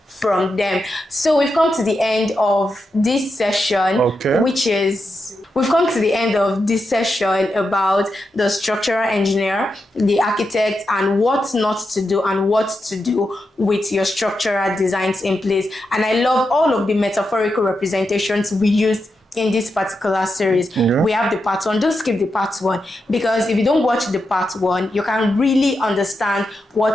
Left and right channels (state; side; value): normal; both; correlation 0.87